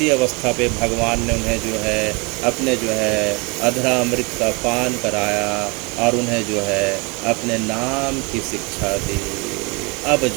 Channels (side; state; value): left; quieter; 29.4 dB